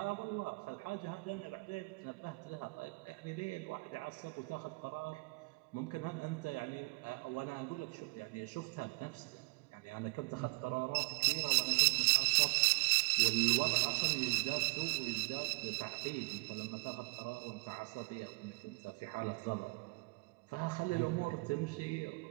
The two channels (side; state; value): left; quieter; 29.3 dB